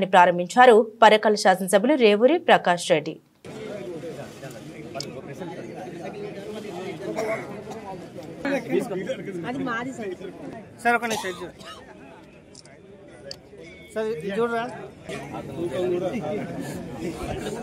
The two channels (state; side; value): identical; both; correlation 1.00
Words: ప్రారంభించారు పరకాల శాసనసభ్యులు రేవూరి ప్రకాష్ రెడ్డి.